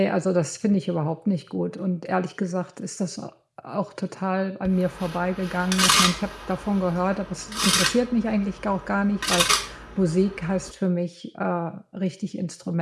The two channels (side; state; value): both; identical; correlation 1.00